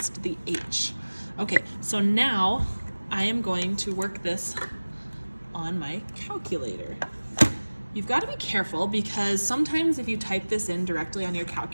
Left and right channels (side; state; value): both; inverted; correlation -1.00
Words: the H. Okay, so now I am going to work this on my calculator. You've got to be careful because sometimes if you type this in directly on your